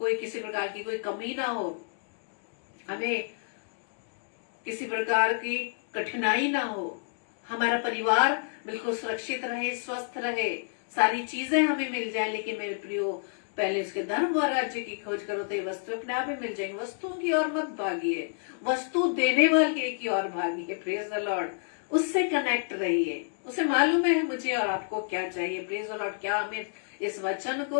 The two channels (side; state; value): right; silent; digital silence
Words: किसी प्रकार की कोई कमी ना हो, हमें किसी प्रकार की कठिनाई ना हो, हमारा परिवार बिल्कुल सुरक्षित रहे, स्वस्थ रहे, सारी चीजें हमें मिल जाए। लेकिन मेरे प्रियो, पहले उसके धर्म और राज्य की खोज करो तो ये वस्तु अपने आप ही मिल जाएंगी। वस्तुओं की ओर मत भागिए, वस्तु देने वाले की ओर भागिए। Praise the lord. उससे कनेक्ट रहिए, उसे मालूम है मुझे और आपको क्या चाहिए। Praise the lord. क्या हमें इस वचन